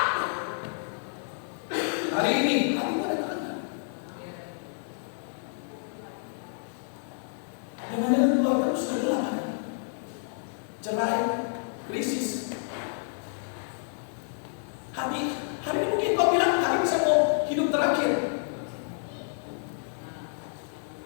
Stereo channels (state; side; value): silent; right; digital silence